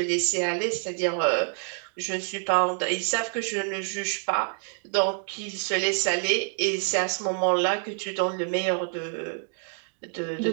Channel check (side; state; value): left; silent; 60 dB below the other